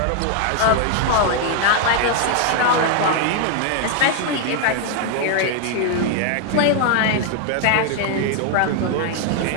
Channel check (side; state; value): both; different; correlation 0.00